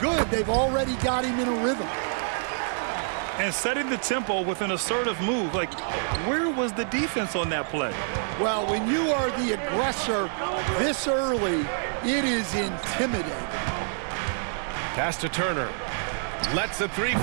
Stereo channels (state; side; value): silent; left; digital silence